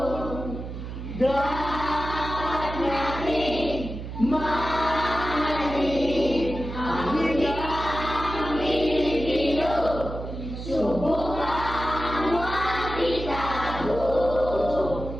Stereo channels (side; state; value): right; noise; hum, 8 dB below the sound